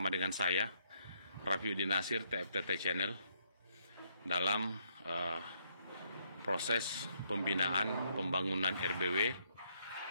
dengan saya, Rafiuddin Nasir, TFTT Channel, dalam proses pembinaan pembangunan RBW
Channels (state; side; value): inverted; both; correlation -0.73